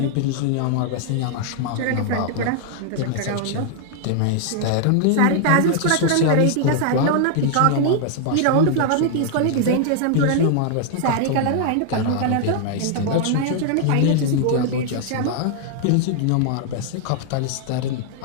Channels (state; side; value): different; both; correlation 0.00